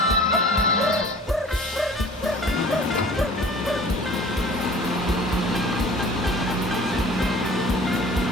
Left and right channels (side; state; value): both; normal; correlation 0.46